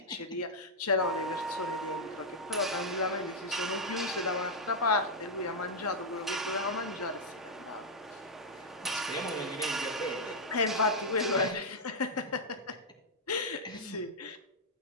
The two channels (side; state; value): both; normal; correlation -0.04